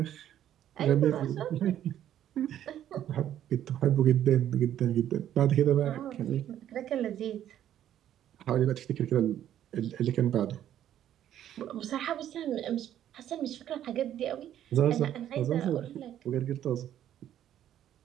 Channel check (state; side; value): quieter; left; 11.2 dB